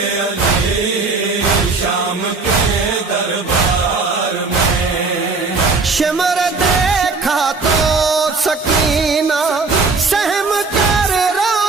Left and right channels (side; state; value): left; quieter; 4.1 dB